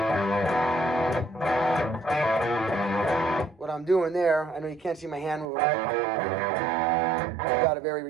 What I'm doing there, I know you can't see my hand moving. I've got a very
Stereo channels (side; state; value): left; drops out; at 5.5 s